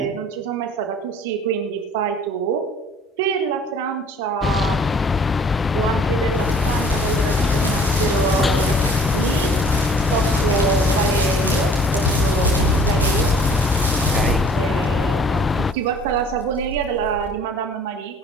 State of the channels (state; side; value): normal; both; correlation 0.51